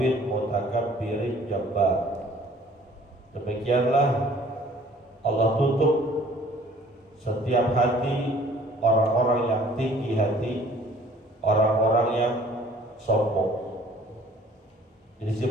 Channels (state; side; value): normal; both; correlation 0.54